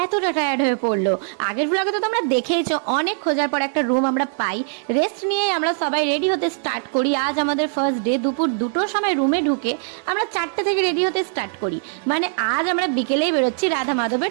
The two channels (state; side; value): silent; left; 65 dB below the other